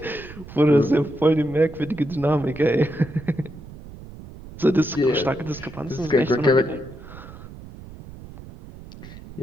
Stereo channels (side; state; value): right; noise; rumble, 16 dB below the sound